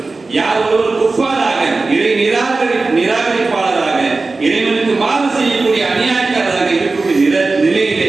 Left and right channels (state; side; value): quieter; left; 3.7 dB